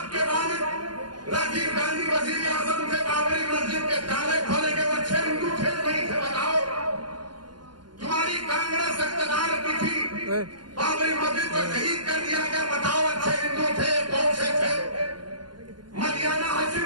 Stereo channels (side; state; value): left; late; 0.71 ms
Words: کے والد راجیو گاندھی وزیر اعظم تھے، بابری مسجد کے تالے کھولے کے وہ اچھے ہندو تھے نہیں تھے؟ بتاؤ۔ تمہاری کانگریس اقتدار کی تھی، بابری مسجد کو شہید کر دیا گیا، بتاؤ اچھے ہندو تھے کون سے تھے؟ مدینہ